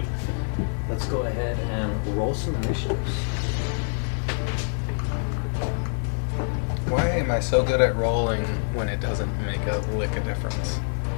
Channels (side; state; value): right; silent; 61 dB below the other